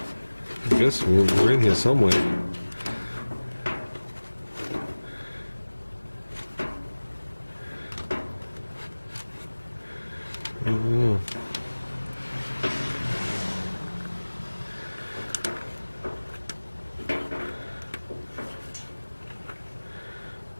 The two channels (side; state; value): both; inverted; correlation -1.00